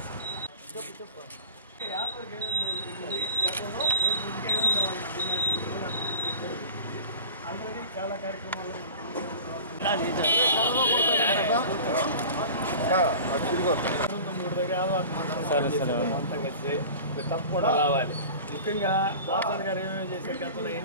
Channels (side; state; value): both; inverted; correlation -0.39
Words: చాలా కార్యక్రమాలు తప్పకుండా రావాలి. ముఖ్యంగా వాసన్ గారు ఏమేమి చేసే గతంలో